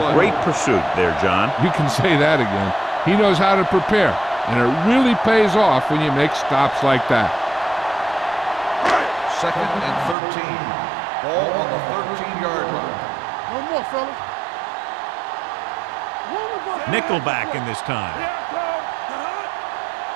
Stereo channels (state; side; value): drops out; left; at 10.2 s